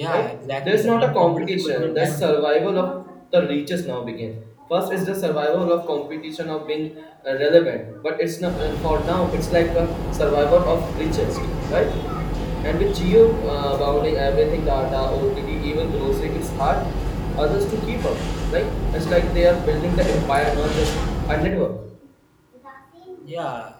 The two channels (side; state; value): both; identical; correlation 1.00